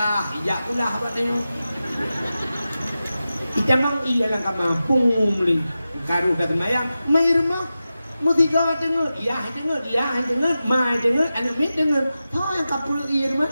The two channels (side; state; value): both; inverted; correlation -0.93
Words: ijak kulah bak tengok. Icamang iya lang ka mampung li. Karu kata mayang, mai rumah, mutiga dengar, iya dengar, mai dengar, anak mit dengar, tau yang kapul iya rumah,